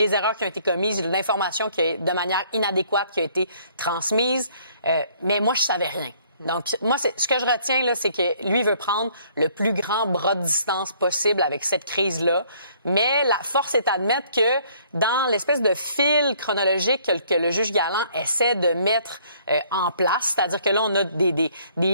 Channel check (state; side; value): inverted; both; correlation -0.61